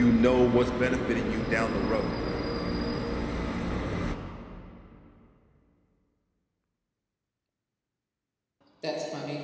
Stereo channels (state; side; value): identical; both; correlation 1.00